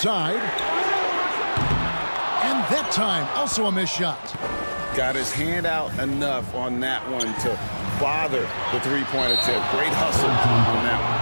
And that time, also a missed shot. Got his hand out enough on that one to bother the three-point attempt. Great hustle on that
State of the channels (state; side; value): inverted; both; correlation -1.00